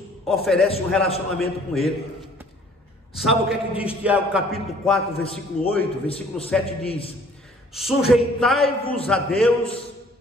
oferece um relacionamento com Ele. Sabe o que é que diz Tiago capítulo 4, versículo 8, versículo 7 diz: sujeitai-vos a Deus,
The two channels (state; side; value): normal; both; correlation 0.56